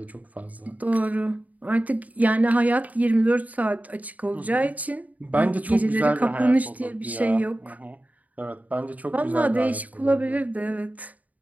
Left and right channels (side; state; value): left; late; 0.074 ms